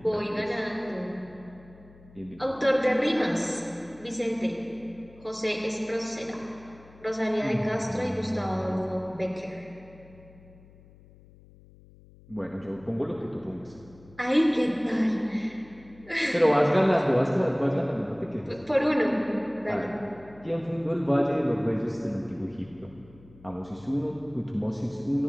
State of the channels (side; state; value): left; noise; hum, 23 dB below the sound